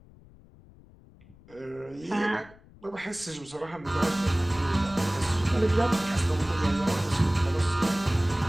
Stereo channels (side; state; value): left; noise; rumble, 24 dB below the sound